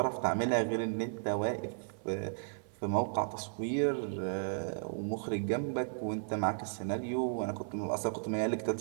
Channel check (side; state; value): left; silent; 55 dB below the other